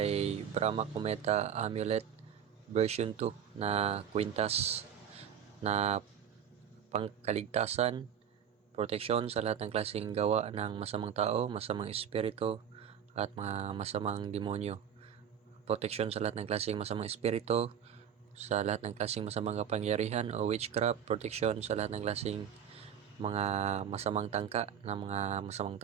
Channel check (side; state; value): left; quieter; 8.5 dB